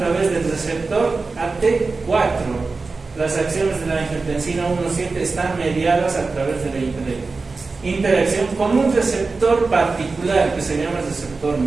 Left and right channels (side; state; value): left; quieter; 4.0 dB